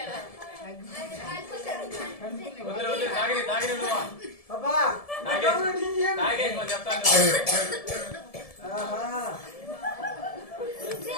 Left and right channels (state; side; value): late; right; 1.7 ms